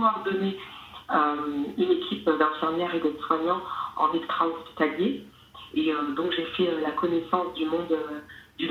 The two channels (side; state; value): both; identical; correlation 1.00